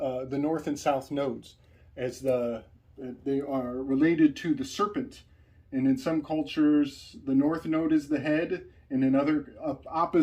the north and south nodes, as they are related to the serpent. And in some cultures, the north node is the head, and in other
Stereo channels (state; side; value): identical; both; correlation 1.00